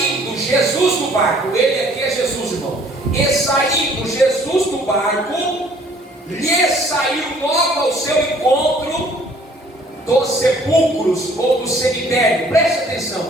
Jesus do barco, ele aqui é Jesus, irmão. E saindo Jesus do barco, lhe saiu logo ao seu encontro dos sepulcros ou do cemitério. Preste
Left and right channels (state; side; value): normal; both; correlation 0.57